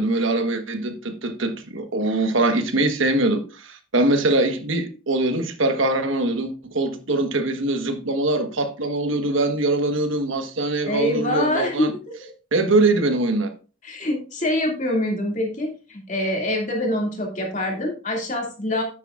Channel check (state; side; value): normal; both; correlation 0.21